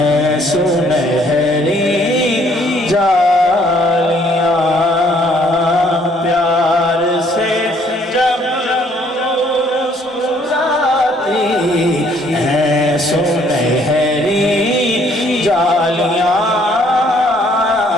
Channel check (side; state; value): both; normal; correlation 0.63